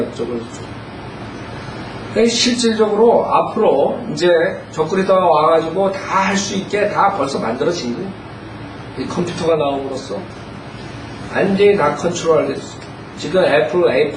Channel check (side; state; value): both; identical; correlation 1.00